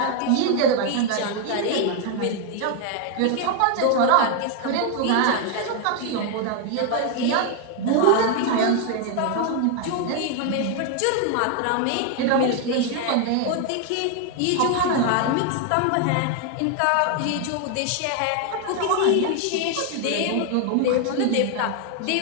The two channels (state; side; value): different; both; correlation 0.01